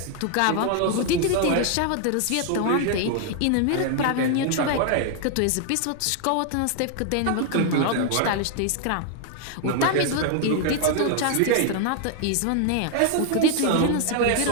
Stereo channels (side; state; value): both; different; correlation 0.00